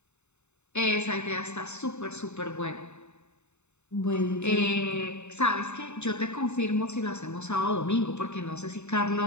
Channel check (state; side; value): late; right; 0.82 ms